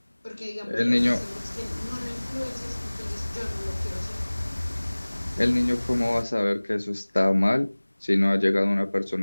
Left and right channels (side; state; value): both; inverted; correlation -1.00